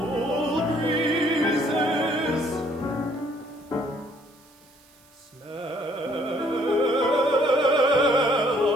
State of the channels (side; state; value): right; noise; hiss, 29 dB below the sound